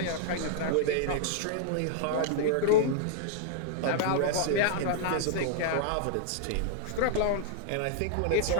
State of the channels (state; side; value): different; both; correlation -0.01